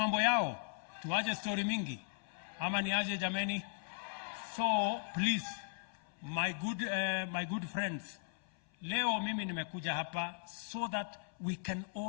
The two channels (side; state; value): right; silent; 53 dB below the other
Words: yao, tuache story mingi. Ama ni aje jameni? So please, my good friends, leo mimi nimekuja hapa so that we can